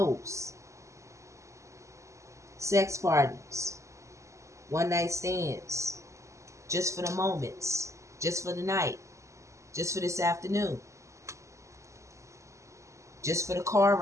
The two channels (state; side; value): late; left; 0.15 ms